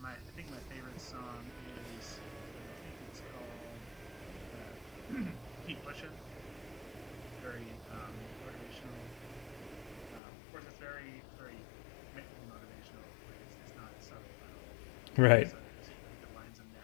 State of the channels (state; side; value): drops out; right; at 10.2 s